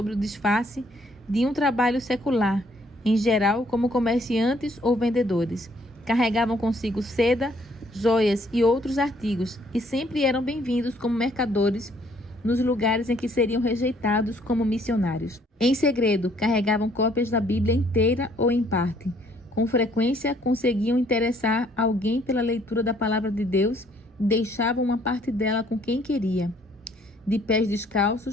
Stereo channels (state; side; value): normal; both; correlation 0.64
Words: o disfarce de um trabalho secular, em geral como comerciantes ou vendedores. Carregavam consigo seda, joias e outros artigos e sempre eram bem-vindos como mercadores nos lugares em que seriam rejeitados como missionários. Em segredo, carregavam cópias da Bíblia inteira ou em parte. Com frequência, conseguiam interessar alguém pela leitura da palavra de Deus e deixavam uma parte dela com quem queria. De pés